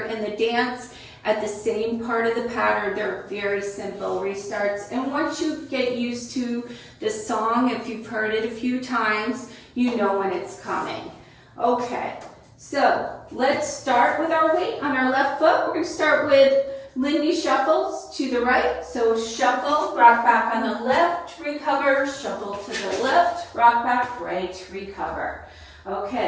in the dance at the same part of the pattern. They're very simple restarts, and once you get used to the song, if you've heard it a few times, you know when it's coming. Okay, so let's start with our weight on our left foot. We're going to start with Lindy shuffles to the right. So shuffle, rock back on the left, recover, shuffle to the left, rock back, right, recover.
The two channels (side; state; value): both; identical; correlation 1.00